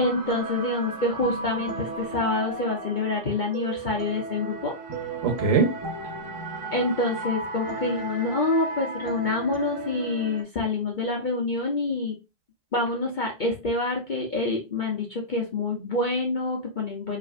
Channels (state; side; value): late; right; 2.2 ms